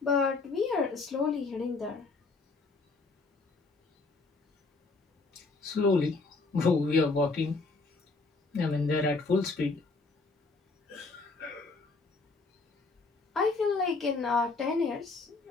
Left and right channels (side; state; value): right; quieter; 3.7 dB